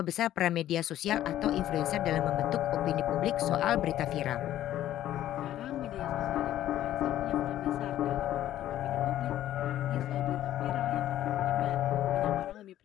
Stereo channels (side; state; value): right; quieter; 12.7 dB